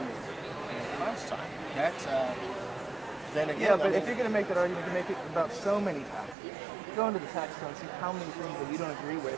class time. That's then again. Yeah, but if you're going to make that argument, you can make it about so many taxes. Go into the tax code and see how many things that you don't agree with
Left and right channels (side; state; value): left; drops out; at 6.4 s